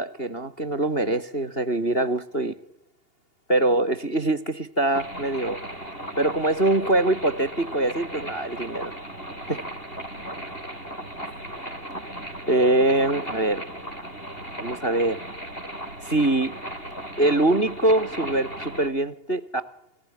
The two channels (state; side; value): late; right; 2.8 ms